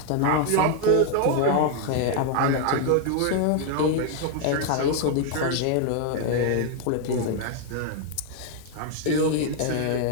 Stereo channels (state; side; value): different; both; correlation 0.00